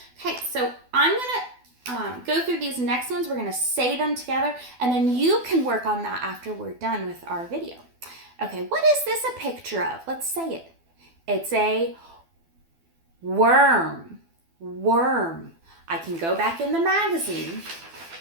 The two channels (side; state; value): left; late; 12 ms